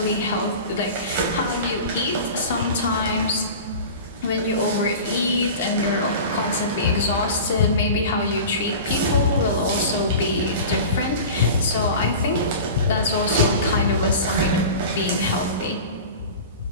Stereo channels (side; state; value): both; inverted; correlation -0.35